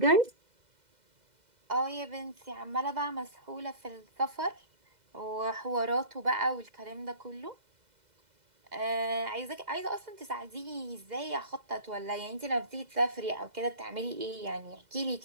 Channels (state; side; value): late; left; 2.0 ms